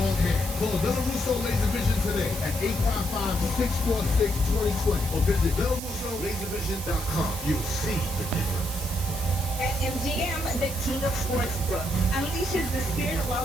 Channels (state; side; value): noise; right; hiss, 10 dB below the sound